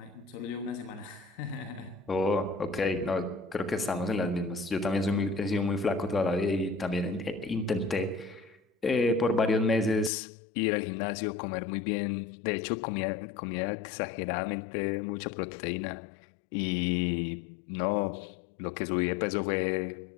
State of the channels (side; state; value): right; drops out; at 10.1 s